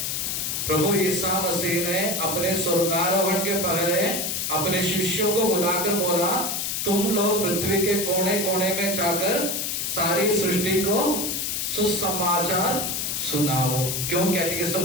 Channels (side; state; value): left; noise; hiss, 1 dB below the sound